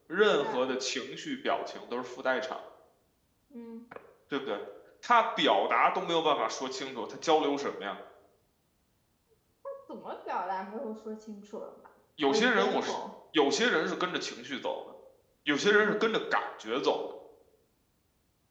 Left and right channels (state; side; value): identical; both; correlation 1.00